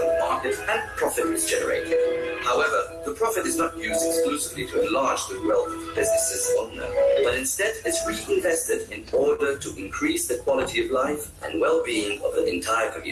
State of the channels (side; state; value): both; identical; correlation 1.00